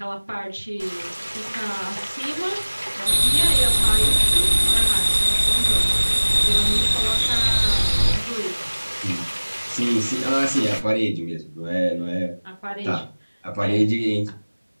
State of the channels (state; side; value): inverted; both; correlation -1.00